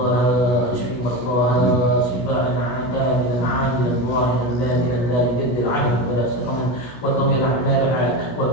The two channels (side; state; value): right; late; 16 ms